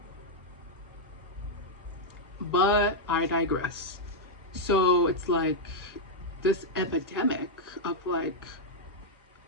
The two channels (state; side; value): normal; both; correlation -0.02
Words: But I digress. So it's like this epidemic of like